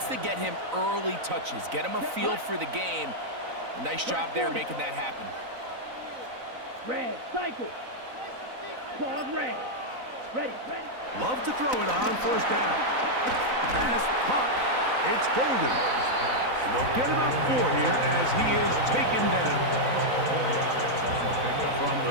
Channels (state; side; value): late; left; 4.0 ms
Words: to get him early touches, get him a feel for the game. A nice job there making that happen. Red, cycle. Claude red. Ready. Love to throw it on 1st down. Pass pop. It's Golden. And they'll get about 4 here as he is taken down. From